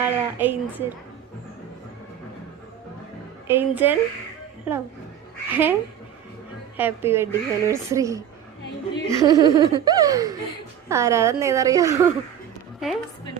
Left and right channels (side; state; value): left; quieter; 9.5 dB